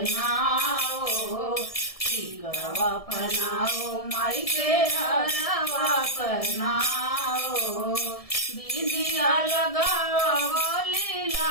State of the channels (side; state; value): right; late; 1.7 ms